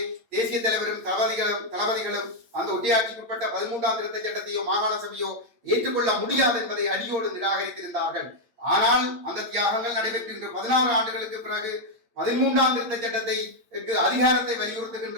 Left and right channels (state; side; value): late; left; 8.7 ms